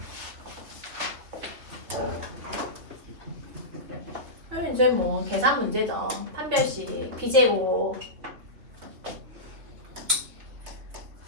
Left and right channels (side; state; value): left; late; 3.3 ms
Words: 그럼 이제 뭐 계산 문제죠. 판별식 b제곱